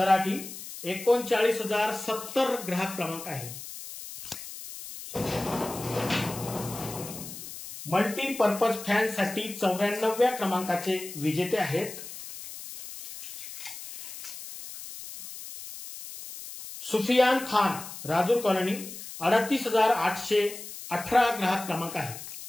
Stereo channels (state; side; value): noise; left; hiss, 12 dB below the sound